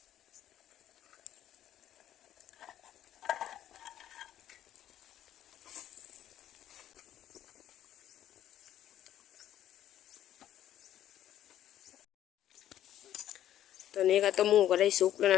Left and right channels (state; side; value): quieter; right; 11.8 dB